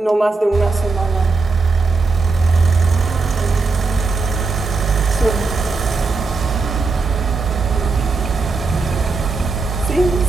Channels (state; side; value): quieter; left; 4.0 dB